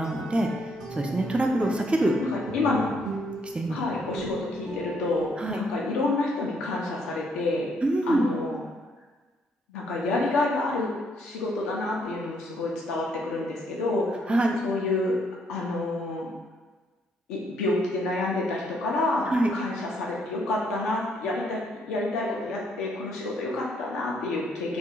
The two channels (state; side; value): normal; both; correlation 0.71